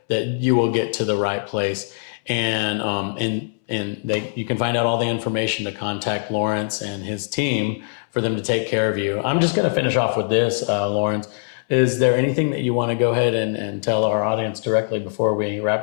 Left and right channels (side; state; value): right; silent; 64 dB below the other